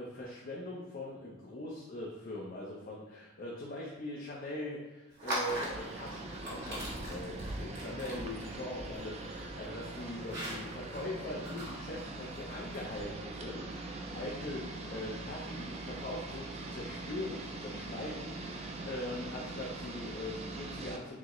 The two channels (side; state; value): both; normal; correlation 0.33